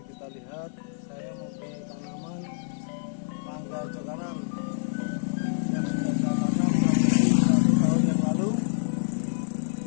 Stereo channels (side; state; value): right; silent; 60 dB below the other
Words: kita lihat. Saya mempunyai tanaman mangga cokanan yang sudah saya tanam 1 tahun yang lalu.